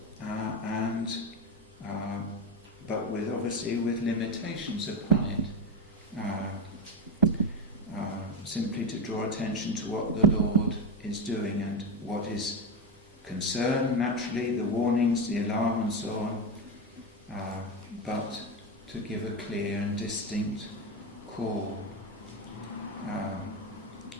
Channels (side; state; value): both; normal; correlation 0.15